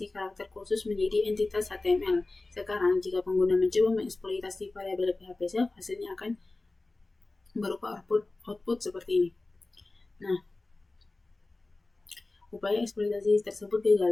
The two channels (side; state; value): right; quieter; 3.1 dB